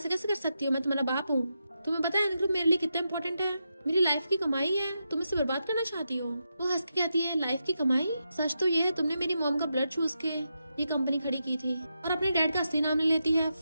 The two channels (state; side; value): inverted; both; correlation -0.86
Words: कैसे कर सकती हो, मैं तुम्हारा बाप हूँ। तुम्हें पता है एन ग्रुप मेरे लिए कितना इंपॉर्टेंट है, मेरी लाइफ की कमाई है, तुम इसे बर्बाद करना चाहती हो। वो हंस के कहती है लाइफ की कमाई, सच तो ये है तुमने मेरी मॉम का ब्लड चूस के ये कंपनी खड़ी की थी। और अपने डैड का असली नाम ले लेती है